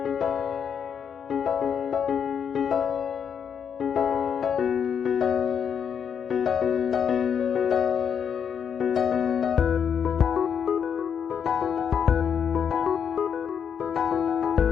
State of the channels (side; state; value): right; quieter; 7.5 dB